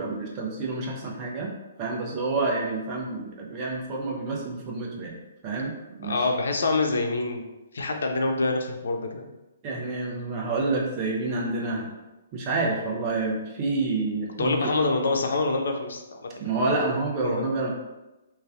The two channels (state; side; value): inverted; both; correlation -0.55